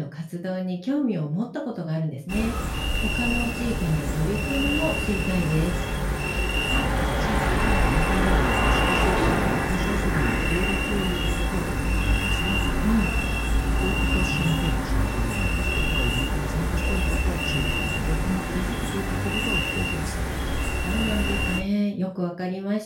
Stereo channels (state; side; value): identical; both; correlation 1.00